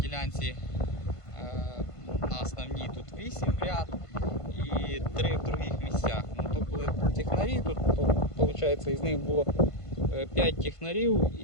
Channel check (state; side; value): late; right; 1.5 ms